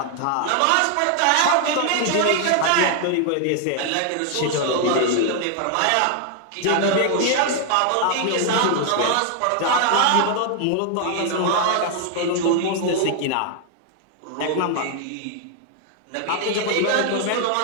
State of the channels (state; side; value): different; both; correlation 0.00